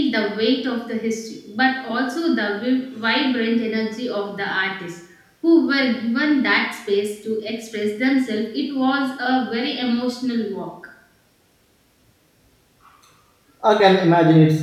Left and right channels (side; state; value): both; identical; correlation 1.00